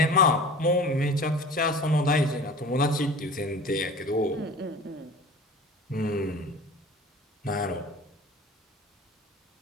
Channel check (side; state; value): both; normal; correlation 0.40